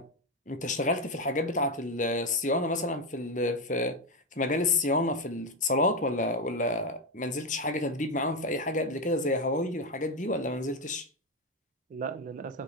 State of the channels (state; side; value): normal; both; correlation 0.10